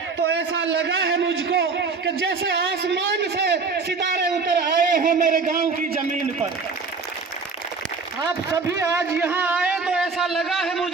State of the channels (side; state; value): left; quieter; 4.6 dB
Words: तो ऐसा लगा है मुझको कि जैसे आसमान से सितारे उतर आए हो मेरे गांव की जमीन पर। आप सभी आज यहाँ आए तो ऐसा लगा है